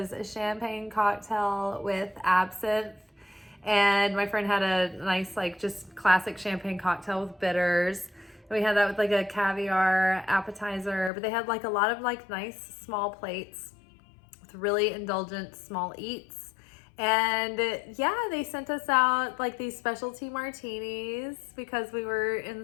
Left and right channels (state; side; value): drops out; right; at 11.1 s